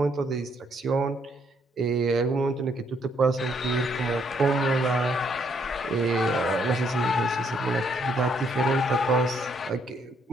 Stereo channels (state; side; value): normal; both; correlation 0.70